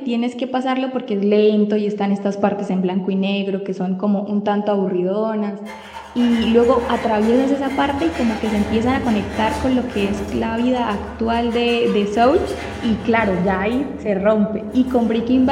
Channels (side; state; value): both; identical; correlation 1.00